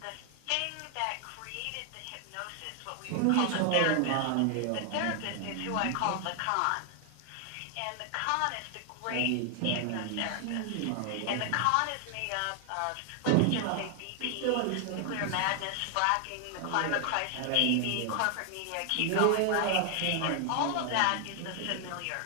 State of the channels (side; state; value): both; different; correlation 0.00